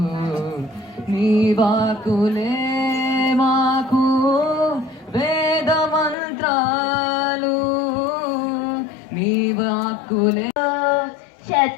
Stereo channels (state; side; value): drops out; right; at 6.2 s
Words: నీ వాకులే మాకు వేద మంత్రాలు, నీ వాకులే.